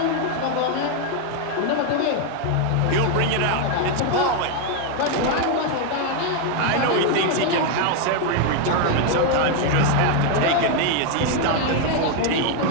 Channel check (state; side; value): different; both; correlation 0.01